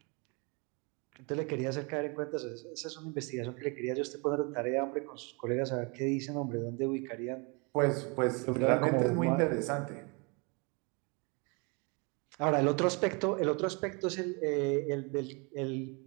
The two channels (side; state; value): left; quieter; 31.3 dB